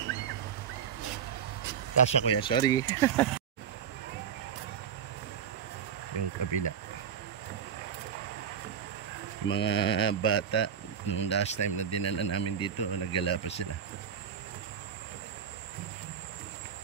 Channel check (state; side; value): quieter; left; 7.8 dB